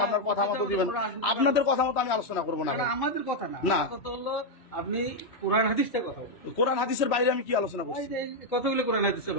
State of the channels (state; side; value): late; right; 3.0 ms